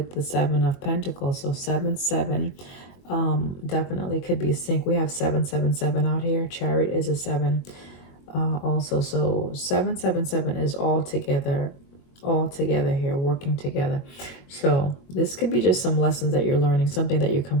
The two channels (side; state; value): right; late; 22 ms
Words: the Seven of Pentacles. So 7, 7, definitely could be a sync. We have 7, 7, 7 out here. Chariot is a 7 also. So 7, 7, 7 is all together here, working together. So this could be just some lessons that you're learning, something that you're